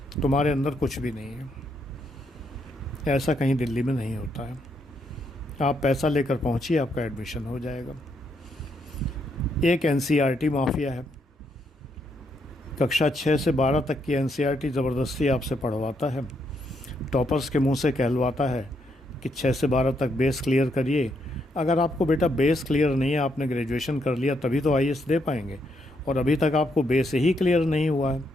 तुम्हारे अंदर कुछ भी नहीं है। ऐसा कहीं दिल्ली में नहीं होता है। आप पैसा लेकर पहुंचिए, आपका एडमिशन हो जाएगा। एक एनसीईआरटी माफिया है। कक्षा 6 से 12 तक की एनसीईआरटी ज़बरदस्ती आपसे पढ़वाता है। टॉपर्स के मुंह से कहलवाता है कि 6 से 12 तक बेस क्लियर करिए। अगर आपको बेटा बेस क्लियर नहीं है, आपने ग्रेजुएशन कर लिया तभी तो आईएएस दे पाएंगे, और अभी तक आपको बेस ही क्लियर नहीं हुआ है।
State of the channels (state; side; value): normal; both; correlation 0.76